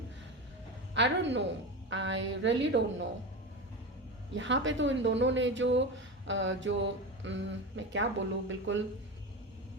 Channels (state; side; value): normal; both; correlation 0.23